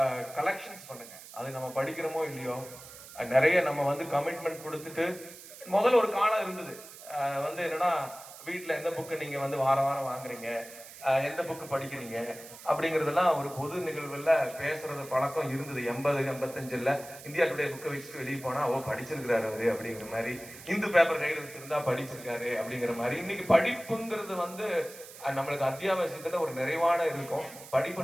கலெக்ஷன்ஸ் பண்ணுங்க. அது நம்ம படிக்கிறோமோ இல்லையோ நிறைய நம்ம வந்து கமிட்மெண்ட் கொடுத்துட்டு முதல்ல ஒரு காலம் இருந்தது. வந்து என்னன்னா வீட்டுல எந்த புக்கு நீங்க வந்து வாரம் வாரம் வாங்குறீங்க, எந்த புக்கு படிக்கிறீங்க அப்படிங்கறதெல்லாம் ஒரு பொது நிகழ்வுல பேசுறது பழக்கம் இருந்தது. 80 85 இந்தியா டுடே புக்கை வச்சுட்டு வெளியே போனா ஓ படிச்சிருக்கிறாரு அவரு அப்படிங்கிற மாதிரி, இந்து பேப்பர் கையில் வச்சிருந்தா படிச்சிருக்காரு அப்படிங்கிற மாதிரி. இன்னைக்கு படிப்புங்கிறது வந்து நம்மளுக்கு அத்தியாவசியத்துல ஒரு நிறைவான இருக்கும்.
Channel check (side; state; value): right; noise; hiss, 16 dB below the sound